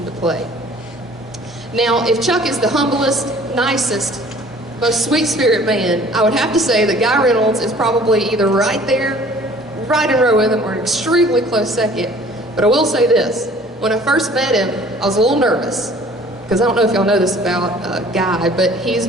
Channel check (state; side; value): normal; both; correlation 0.51